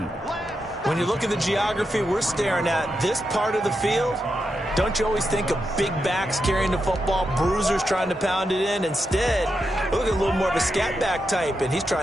When you look at the geography we're staring at, this part of the field, don't you always think of big backs carrying the football, bruisers trying to pound it in? Instead, look at a little more of a scat back type, and he's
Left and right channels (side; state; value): both; normal; correlation 0.86